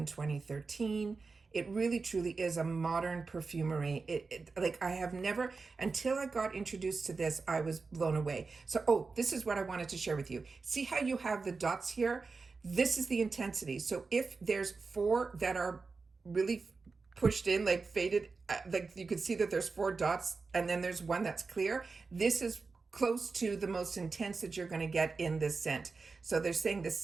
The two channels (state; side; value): quieter; left; 4.3 dB